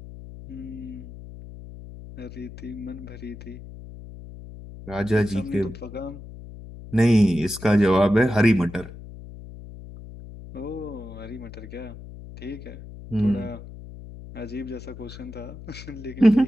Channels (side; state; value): left; noise; hum, 14 dB below the sound